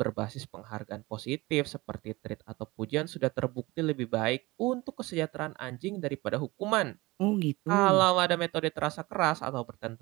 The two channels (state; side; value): quieter; left; 21.9 dB